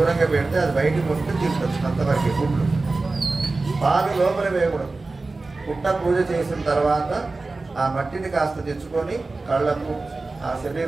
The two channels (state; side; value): quieter; left; 3.5 dB